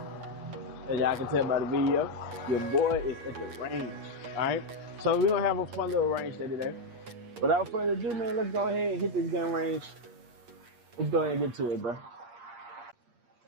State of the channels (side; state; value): left; late; 8.6 ms